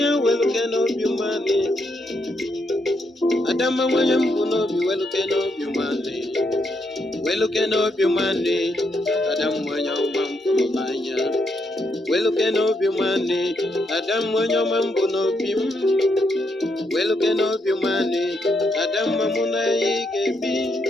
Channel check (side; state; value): both; normal; correlation 0.78